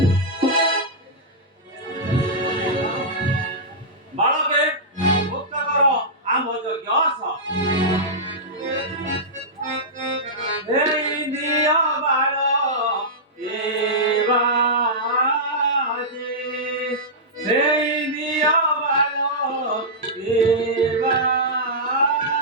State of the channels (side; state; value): both; normal; correlation -0.12